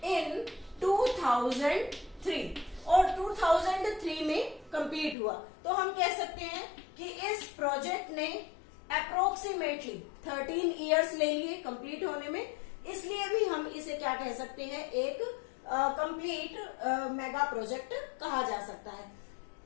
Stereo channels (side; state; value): right; drops out; at 5.2 s